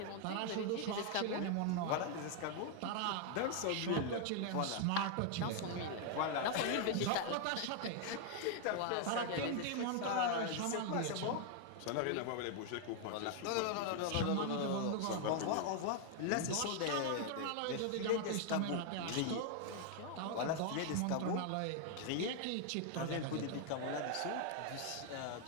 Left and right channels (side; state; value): both; different; correlation 0.00